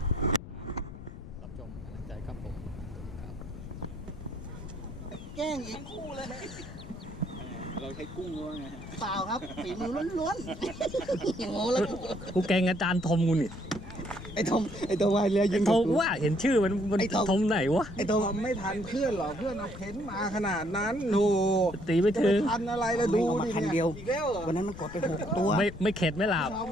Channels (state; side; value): noise; left; rumble, 13 dB below the sound